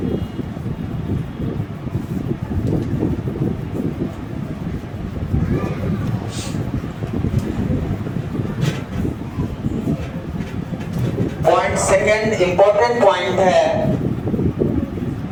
पॉइंट सेकेंड, इंपॉर्टेंट पॉइंट है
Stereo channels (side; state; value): both; identical; correlation 1.00